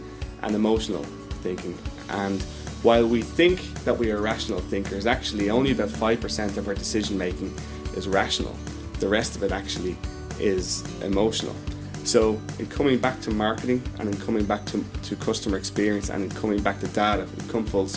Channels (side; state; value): both; identical; correlation 1.00